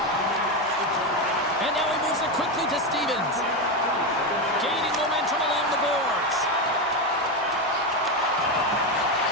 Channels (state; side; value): normal; both; correlation 0.12